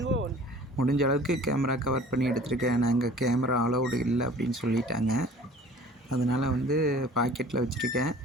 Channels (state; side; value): normal; both; correlation 0.48